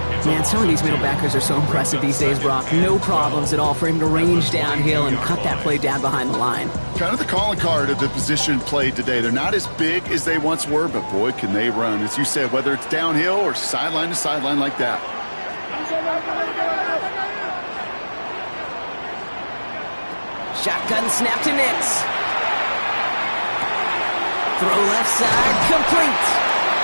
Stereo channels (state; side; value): inverted; both; correlation -1.00